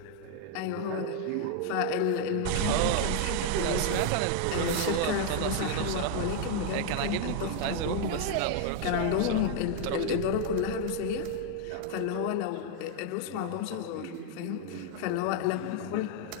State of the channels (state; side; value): different; both; correlation 0.00